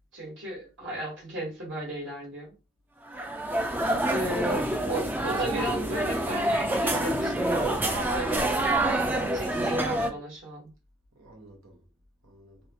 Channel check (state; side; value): normal; both; correlation 0.60